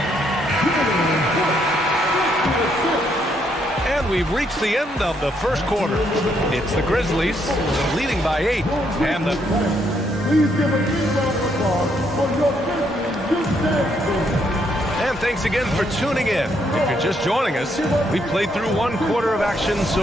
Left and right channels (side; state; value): both; normal; correlation 0.73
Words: And we've reached the end of the first quarter. It's the Grizzlies leading by 8. And the... Please give a big round of applause for your Grizzlies youth dance team. And thanks again for tuning in. If you're just joining us, we played through 1 quarter of action